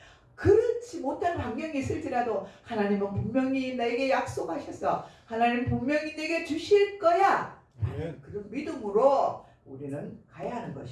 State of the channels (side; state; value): both; identical; correlation 1.00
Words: 그렇지 못한 환경이 있을지라도 하나님은 분명히 내게 약속하셔서 하나님 분명히 내게 주실 거야. 그런 믿음으로 우리는 가야 하는